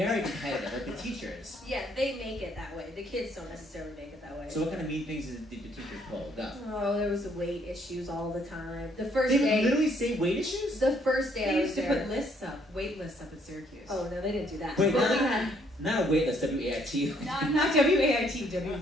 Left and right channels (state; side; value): normal; both; correlation 0.67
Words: competitive, like the teachers. Yeah, they make it that way. The kids don't necessarily make it that way. So what kind of mean things did the teachers pull? Go. Oh, there was weight issues all the time. The first They day... would literally say weight issues? The first day They I was used to there... put lists up, wait lists up at Syracuse. Oh, no, they didn't do that. Wait, But we had... not a wait list, W-A-I-T. Not W-A-I-T,